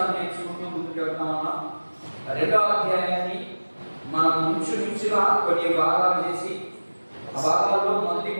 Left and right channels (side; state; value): both; inverted; correlation -1.00